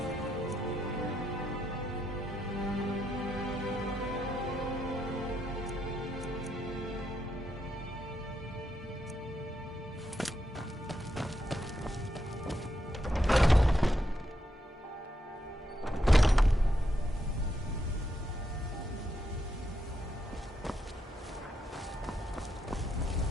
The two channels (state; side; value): normal; both; correlation 0.81